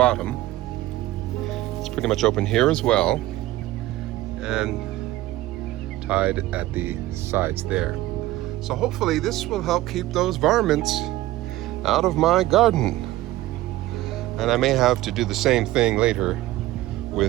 It's pretty much open here as well, and tied at the sides there. So hopefully this will help keep those varmints out of my garden. And I may have to do the same thing later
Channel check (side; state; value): left; quieter; 16.3 dB